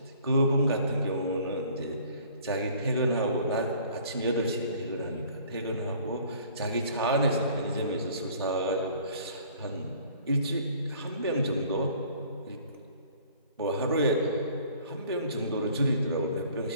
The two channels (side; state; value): both; inverted; correlation -0.53